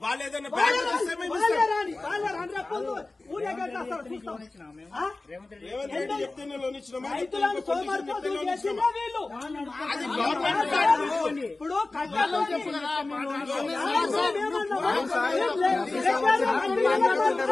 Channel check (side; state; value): right; quieter; 3.2 dB